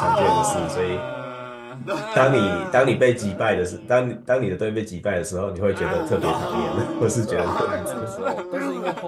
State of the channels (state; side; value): identical; both; correlation 1.00